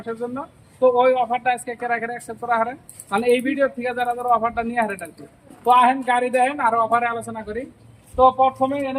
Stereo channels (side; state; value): both; identical; correlation 1.00